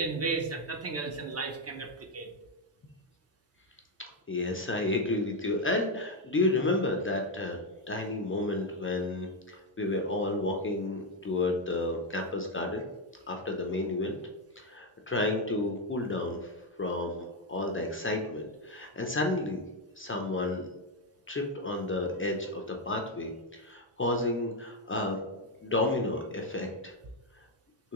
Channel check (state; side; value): normal; both; correlation 0.05